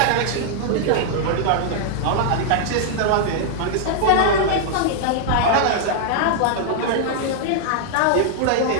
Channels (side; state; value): both; different; correlation -0.01